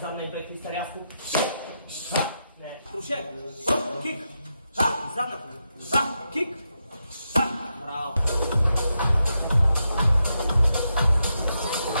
Задна бек твиста рязко. Не. Крушет. Кик. Задна. Кик. Браво.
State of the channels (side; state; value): both; inverted; correlation -0.85